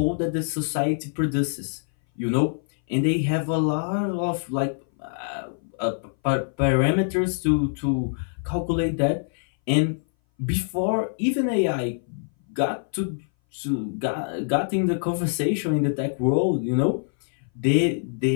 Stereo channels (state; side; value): silent; right; 60 dB below the other